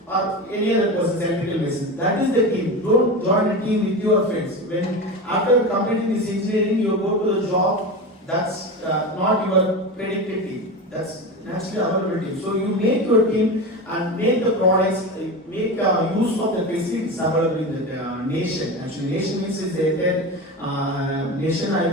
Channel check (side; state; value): both; normal; correlation 0.24